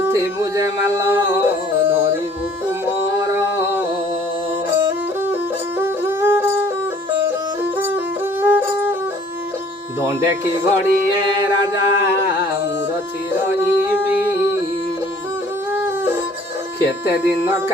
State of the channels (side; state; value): both; normal; correlation 0.55